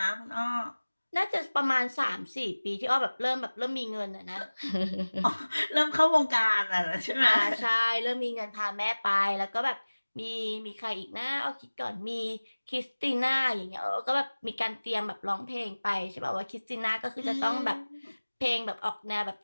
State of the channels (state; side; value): inverted; both; correlation -1.00